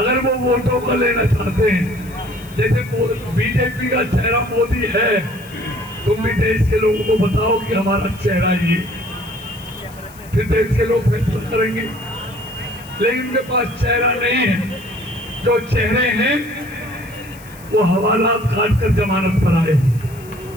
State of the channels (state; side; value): noise; left; hiss, 22 dB below the sound